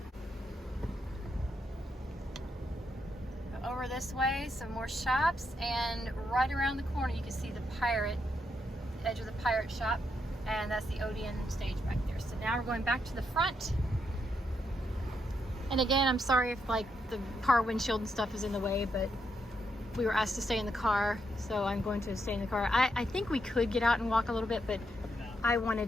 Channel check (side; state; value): both; normal; correlation 0.80